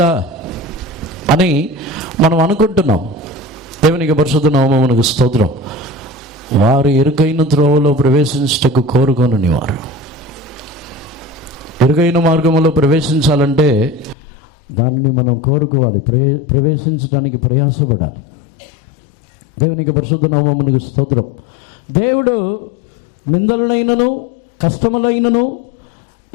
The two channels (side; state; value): right; drops out; at 14.2 s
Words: అని మనం అనుకుంటున్నాం. దేవునికి పరిశుద్ధ నామమునకు స్తోత్రం. వారు ఇరుకైన త్రోవలో ప్రవేశించటకు కోరుకొనని వారు, ఇరుకైన మార్గంలో ప్రవేశించాలంటే దానిని మనం కోరుకోవాలి, ప్రవేశించడానికి ప్రయాసపడాలి. దేవునికి పరిశుద్ధ నామమునకు స్తోత్రం. దేవుడు నిందలనైనను, కష్టములైనను,